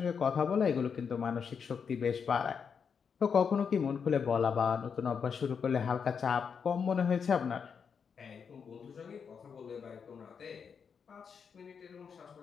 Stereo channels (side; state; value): right; quieter; 6.5 dB